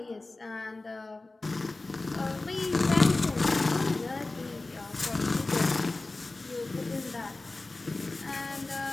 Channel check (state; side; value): quieter; right; 3.2 dB